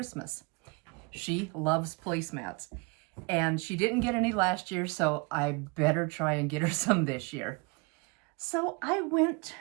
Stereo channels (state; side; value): quieter; left; 29.6 dB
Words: She loves placemats and she didn't get any last year, so I better try and get her some this year. So I went